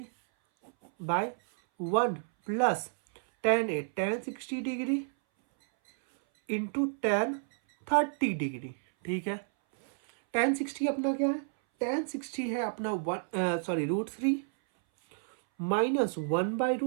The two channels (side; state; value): left; silent; 58 dB below the other